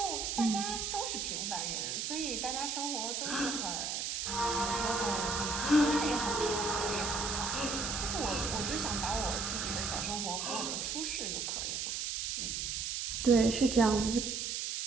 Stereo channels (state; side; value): noise; right; hiss, 2 dB below the sound